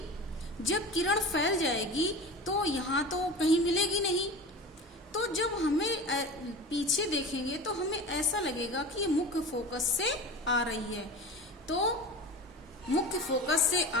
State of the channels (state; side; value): normal; both; correlation 0.32